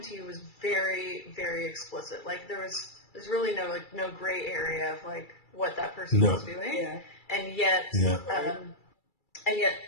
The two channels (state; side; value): late; right; 2.3 ms